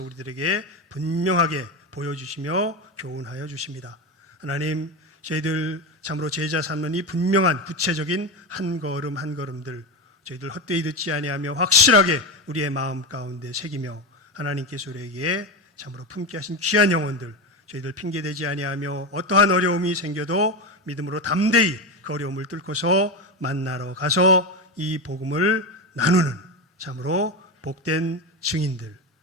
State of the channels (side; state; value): both; normal; correlation 0.16